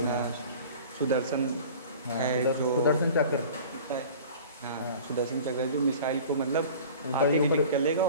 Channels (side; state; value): both; inverted; correlation -0.42